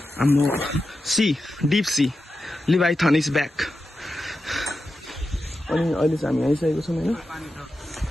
हाम्रो sea deep sea leviathan is back अनि अहिले चाहिँ हामी आइसकेको छौँ होइन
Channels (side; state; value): both; normal; correlation 0.90